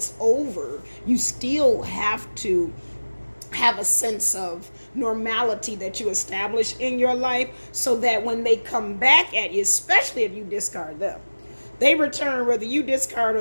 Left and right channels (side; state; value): both; inverted; correlation -1.00